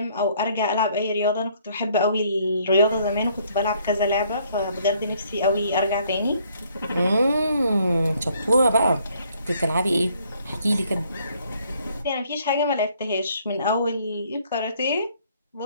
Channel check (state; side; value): inverted; both; correlation -0.65